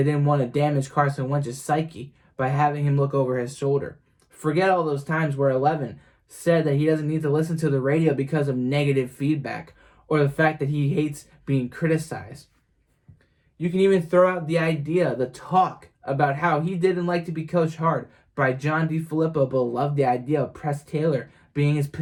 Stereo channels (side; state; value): both; identical; correlation 1.00